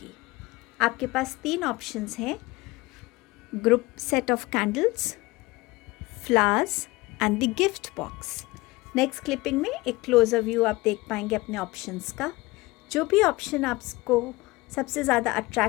आपके पास 3 ऑप्शंस हैं: group set of candles, flowers and the gift box. Next clipping में एक क्लोजर व्यू आप देख पाएंगे अपने ऑप्शंस का। जो भी ऑप्शन आपको सबसे ज़्यादा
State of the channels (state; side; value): quieter; right; 21.4 dB